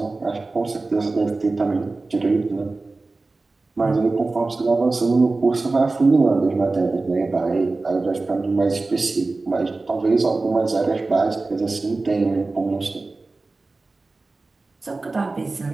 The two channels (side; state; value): left; quieter; 3.5 dB